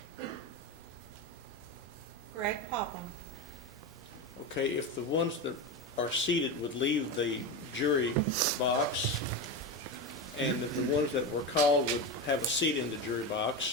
Greg Popham. Okay, if the ones that are seated would leave the jury box, and if the ones that were called would have a seat in the jury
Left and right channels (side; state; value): both; normal; correlation 0.18